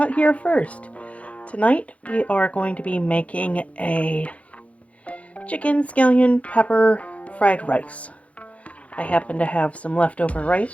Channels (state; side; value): late; right; 0.064 ms